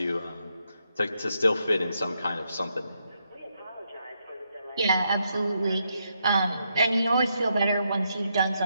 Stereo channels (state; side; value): inverted; both; correlation -0.80